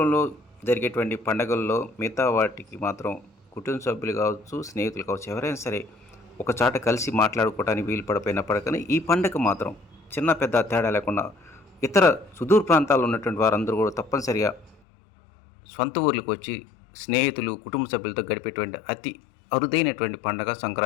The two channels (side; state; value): right; drops out; at 14.8 s